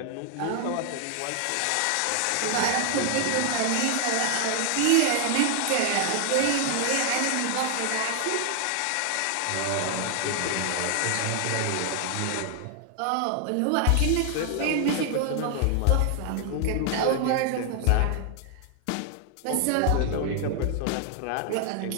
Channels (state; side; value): different; both; correlation 0.00